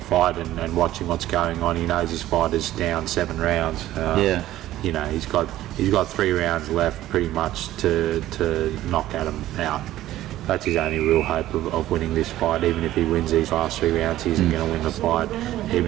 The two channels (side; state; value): left; quieter; 14.4 dB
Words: fight and watching what's going on, he knows his fight is down 7 rounds. He's got 3 rounds left pretty much to knock Adam out. That's his only real hope of winning this fight. Even if he wins these last 3 rounds, he isn't going to win the fight.